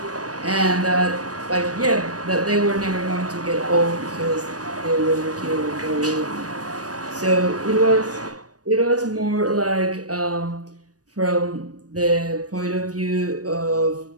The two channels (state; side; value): late; left; 0.68 ms